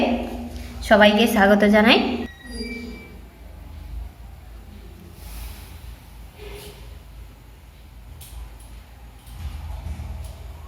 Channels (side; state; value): both; identical; correlation 1.00